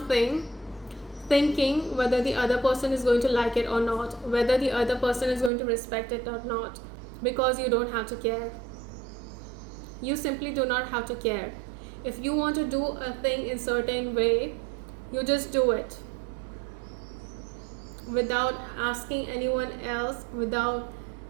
thinking whether the other person is going to like it or not, whether the other person is going to respect it or not, because you don't have to care. You simply do not have to care. If you want to do a thing in a certain way, you just do it without asking anyone else, without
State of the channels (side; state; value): left; drops out; at 5.5 s